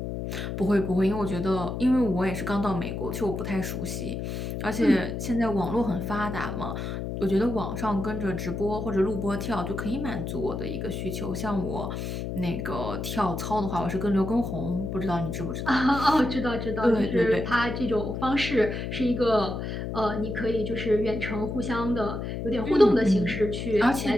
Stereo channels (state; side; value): noise; left; hum, 4 dB below the sound